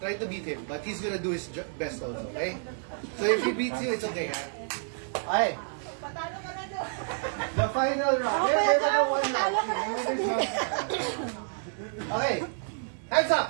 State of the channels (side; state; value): left; silent; digital silence